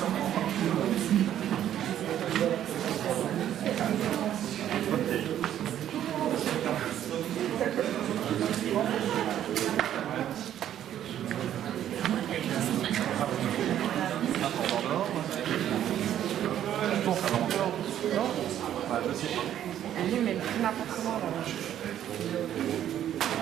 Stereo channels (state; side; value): quieter; left; 11.0 dB